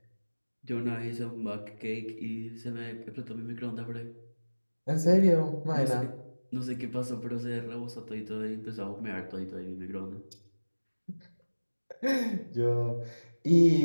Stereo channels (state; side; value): inverted; both; correlation -1.00